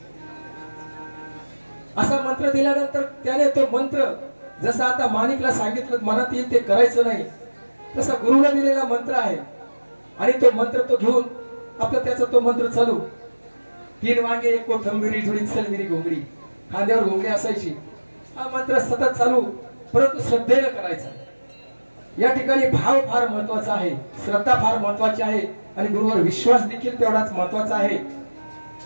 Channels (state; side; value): inverted; both; correlation -1.00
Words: असा मंत्र दिल्यानंतर त्याने तो मंत्र, जसं आता माणिकला सांगितलं मनात येईल ते करायचं नाही, तसा गुरुने दिलेला मंत्र आहे. आणि तो मंत्र तो घेऊन आपला त्याचा तो मंत्र चालू. 3 वांगे, 1 कोथिंबीर जुडी, चल मेरी घोंगडी. खांद्यावर घोंगडी असायची. हा मंत्र सतत चालू, परंतु श्रद्धेने करायचा. या ठिकाणी भाव फार महत्वाचा आहे, श्रद्धा फार महत्वाची आहे आणि गुरुवर विश्वास देखील तेवढाच महत्वाचा आहे.